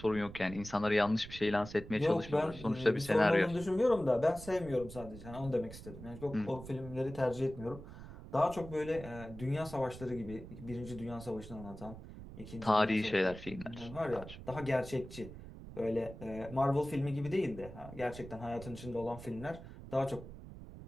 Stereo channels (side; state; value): right; noise; rumble, 13 dB below the sound